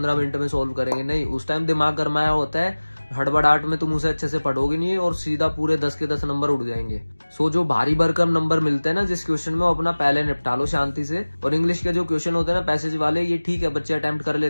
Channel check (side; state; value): both; inverted; correlation -1.00